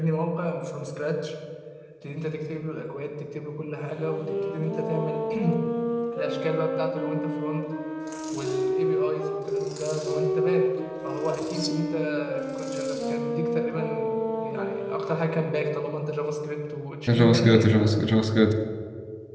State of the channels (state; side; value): identical; both; correlation 1.00